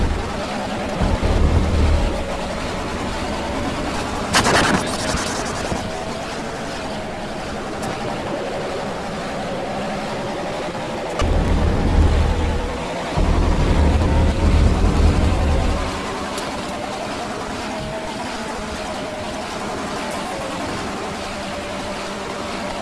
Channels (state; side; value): identical; both; correlation 1.00